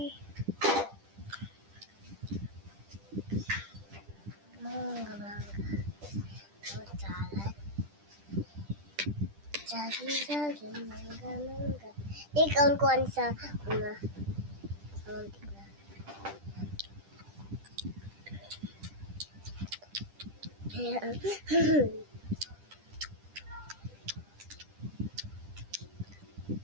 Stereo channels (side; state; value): left; late; 10 ms